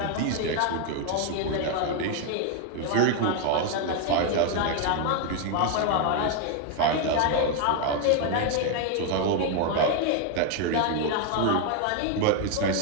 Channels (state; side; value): different; both; correlation 0.01